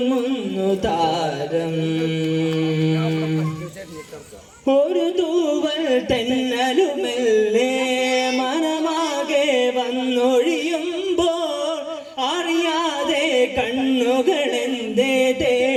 താരം. ഒരു തൂവൽ തെന്നലുമെല്ലേ മനമാകെ വന്നൊഴിയുമ്പോൾ അറിയാതെ കണ്ണുകളെന്തേ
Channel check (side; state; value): both; identical; correlation 1.00